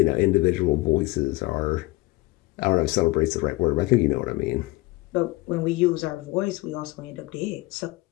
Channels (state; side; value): quieter; right; 21.0 dB